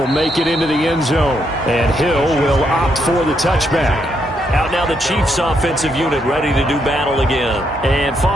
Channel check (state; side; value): normal; both; correlation 0.77